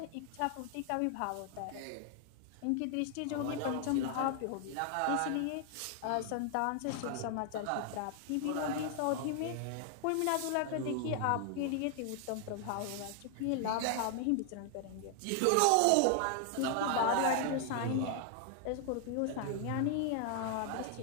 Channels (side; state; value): both; different; correlation 0.00